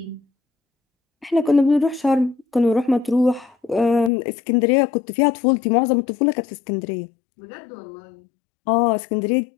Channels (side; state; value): right; drops out; at 4.1 s